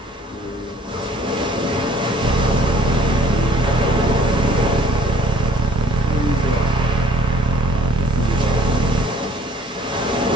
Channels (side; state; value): both; normal; correlation 0.55